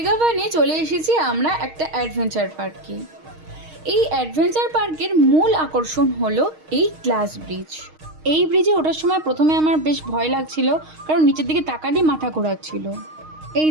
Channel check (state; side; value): late; left; 6.4 ms